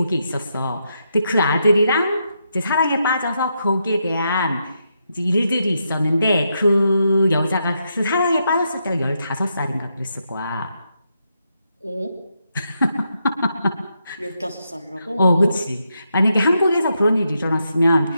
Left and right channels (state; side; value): inverted; both; correlation -0.82